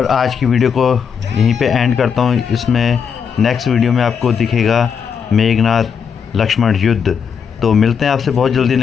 आज की वीडियो को यहीं पे एंड करता हूँ। इसमें नेक्स्ट वीडियो में आपको दिखेगा मेघनाथ लक्ष्मण युद्ध। तो मिलते हैं आपसे बहुत जल्दी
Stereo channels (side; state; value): right; quieter; 6.8 dB